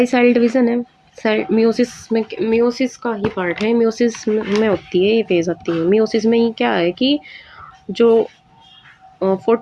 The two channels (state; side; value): identical; both; correlation 1.00